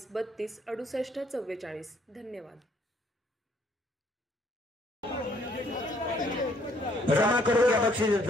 32 68 44। धन्यवाद। जमा करून घ्या बक्षीस।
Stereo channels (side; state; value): both; normal; correlation 0.65